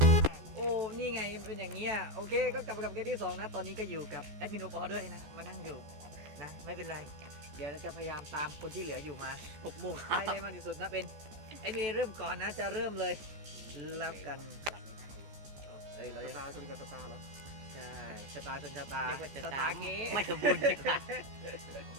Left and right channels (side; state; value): left; late; 14 ms